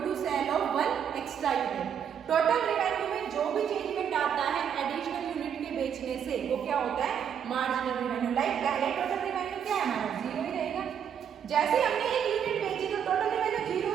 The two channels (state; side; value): quieter; left; 8.3 dB